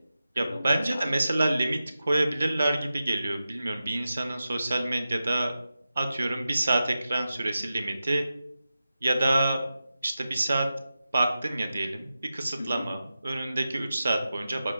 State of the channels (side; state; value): both; inverted; correlation -0.92